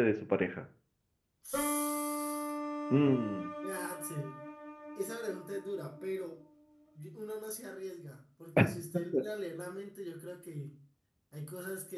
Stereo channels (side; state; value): both; identical; correlation 1.00